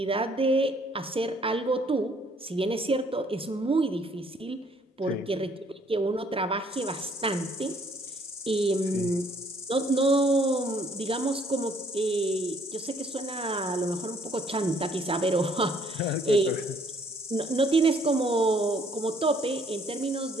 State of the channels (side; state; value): both; normal; correlation 0.64